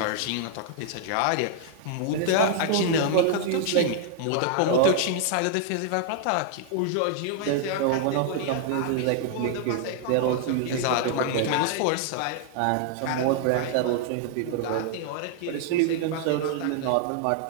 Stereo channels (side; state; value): both; different; correlation 0.00